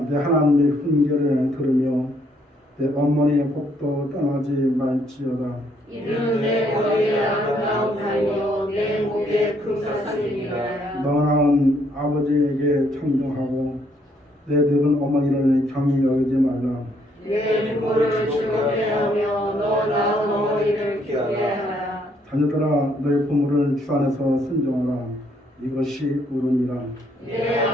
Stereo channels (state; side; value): normal; both; correlation 0.69